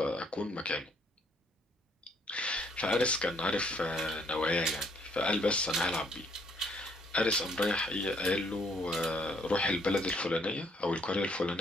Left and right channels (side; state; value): both; normal; correlation 0.66